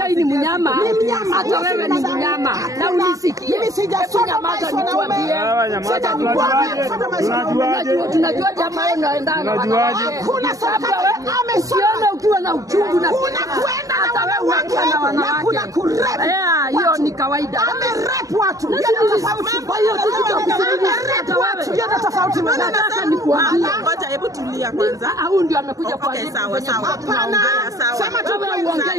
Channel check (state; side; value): late; left; 0.16 ms